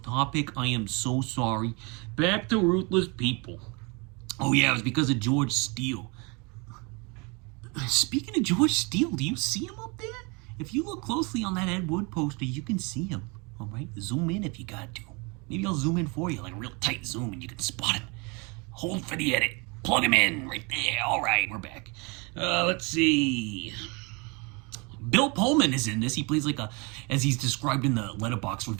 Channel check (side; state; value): left; quieter; 29.8 dB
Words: topic. I am so sorry. Back to Ruthless People. Oh, yeah, it was because of George Steele. Speaking of George Steele, do you see him up there? If you look closely on that Ed Wood poster, you can see him. All right? Zoom in if you got to. Maybe I'll zoom in for you, like a real tight zoom, and you can spot him. Hold for the edit. Plug him in right there. All right, we're back. Let's see. Bill Pullman is in this. He plays like as he's described in the Letterboxd